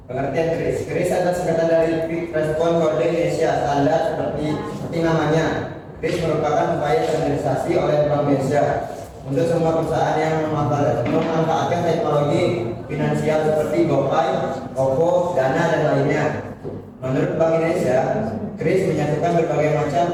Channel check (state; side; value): identical; both; correlation 1.00